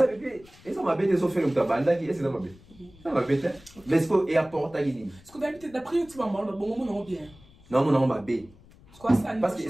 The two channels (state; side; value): noise; left; rumble, 25 dB below the sound